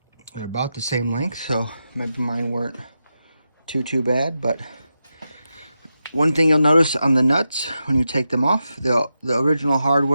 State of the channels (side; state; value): both; inverted; correlation -0.88